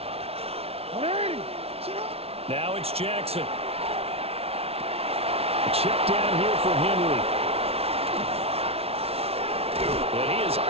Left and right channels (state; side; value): late; left; 0.29 ms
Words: Now it's Jackson. Check down here for Henry. And he is